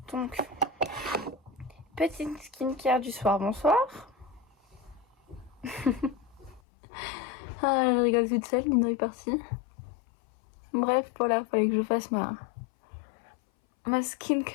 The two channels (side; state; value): right; drops out; at 6.6 s